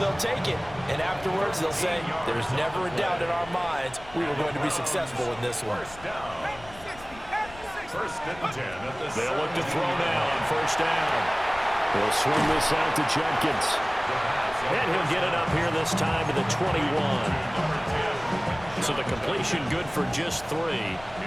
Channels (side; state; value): left; noise; rumble, 19 dB below the sound